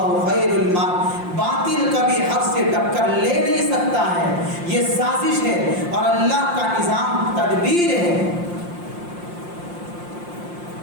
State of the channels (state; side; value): late; left; 5.7 ms